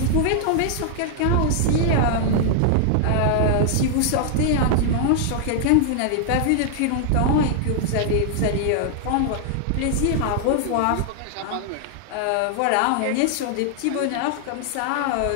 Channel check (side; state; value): both; different; correlation 0.00